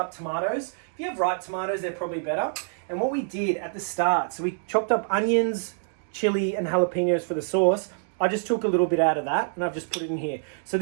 tomatoes. If you have ripe tomatoes, they're probably better. And what we did at the start, so we chopped up onions, chili, and jalapenos for the sauce. I just took a little bit out of that and I've just put it in here. So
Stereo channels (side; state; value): left; silent; digital silence